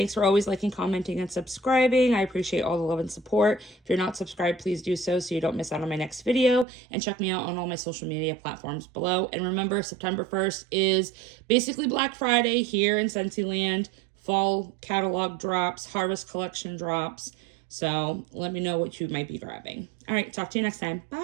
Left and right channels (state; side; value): drops out; left; at 6.7 s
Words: for always liking, commenting, and subscribing. I appreciate all the love and support. If you're not subscribed, please do so you don't miss out on my next video. And check me out on all my social media platforms below. And remember, September 1st is basically Black Friday here in Scentsy Land. Fall catalog drops, harvest collection drops. So let me know what you might be grabbing. All right, talk to you next time.